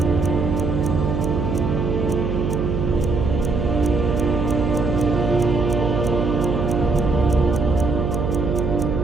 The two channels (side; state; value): right; noise; hum, 1 dB below the sound